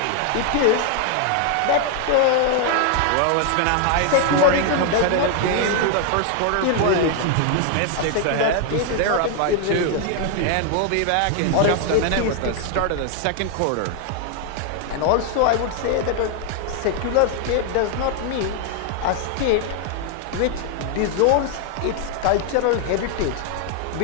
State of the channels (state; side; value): different; both; correlation 0.00